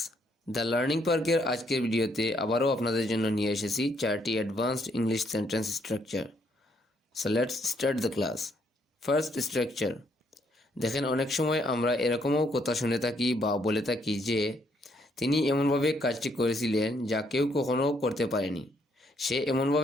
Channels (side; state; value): both; normal; correlation 0.71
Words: the learning পার্কের আজকের ভিডিওতে আবারও আপনাদের জন্য নিয়ে এসেছি 4টি advanced English sentence structure. So let's start the class. First structure. দেখেন, অনেক সময় আমরা এরকমও কথা শুনে থাকি বা বলে থাকি যে তিনি এমনভাবে কাজটি করেছিলেন যা কেউ কখনো করতে পারেনি। সে